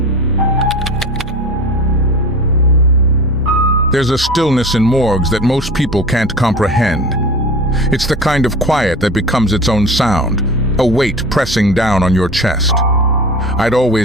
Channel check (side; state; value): both; normal; correlation 0.35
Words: There's a stillness in morgues that most people can't comprehend. It's the kind of quiet that becomes its own sound, a weight pressing down on your chest. I'd